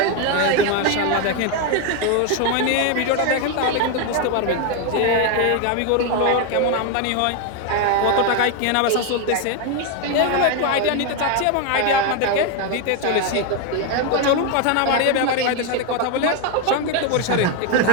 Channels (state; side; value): different; both; correlation 0.01